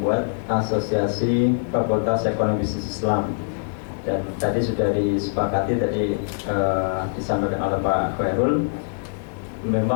asosiasi Fakultas Ekonomi Bisnis Islam. Dan tadi sudah disepakati, tadi disampaikan oleh Pak Khairul,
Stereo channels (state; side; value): silent; right; digital silence